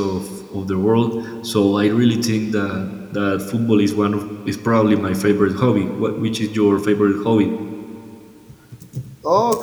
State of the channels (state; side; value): identical; both; correlation 1.00